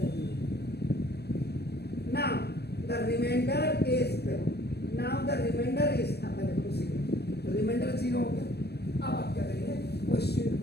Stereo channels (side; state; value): right; late; 0.47 ms